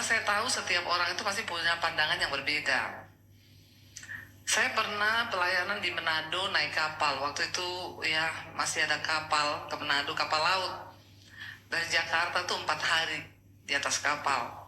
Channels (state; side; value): identical; both; correlation 1.00